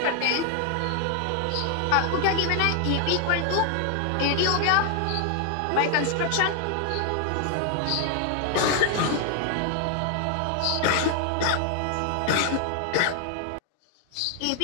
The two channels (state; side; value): different; both; correlation 0.00